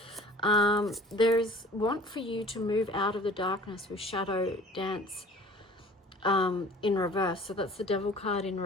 There's want for you to move out of the darkness with Shadow Dance in reverse. So that's the Devil card in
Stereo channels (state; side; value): normal; both; correlation 0.47